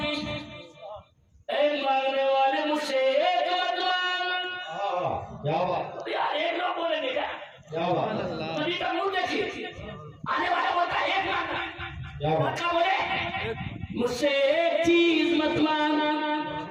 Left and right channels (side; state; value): both; identical; correlation 1.00